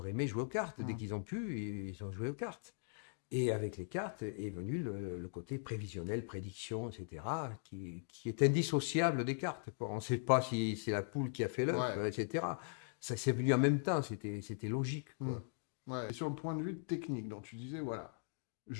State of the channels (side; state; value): right; silent; digital silence